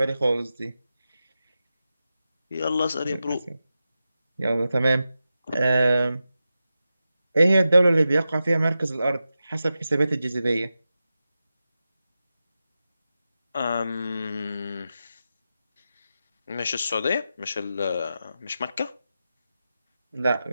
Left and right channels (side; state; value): both; inverted; correlation -0.91